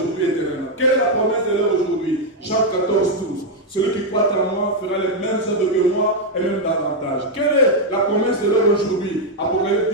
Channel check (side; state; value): both; normal; correlation 0.00